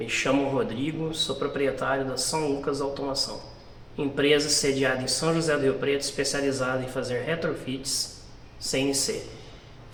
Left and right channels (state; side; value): identical; both; correlation 1.00